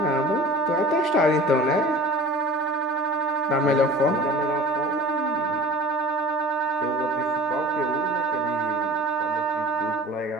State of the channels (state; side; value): normal; both; correlation 0.42